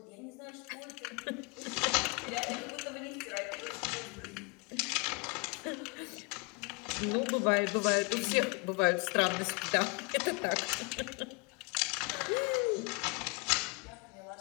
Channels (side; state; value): right; quieter; 31.5 dB